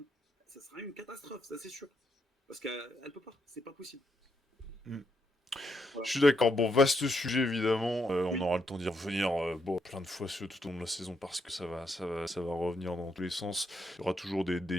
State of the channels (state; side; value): normal; both; correlation 0.78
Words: Ça sera une catastrophe, ça c'est sûr. Parce qu'elle ne peut pas, c'est pas possible. Mm. Je Voilà. suis d'accord. Bon, vaste sujet évidemment. On Oui, aura le temps d'y revenir bon, plein de fois tout au long de la saison parce que ça va revenir dans tous les sens. Il y aura toujours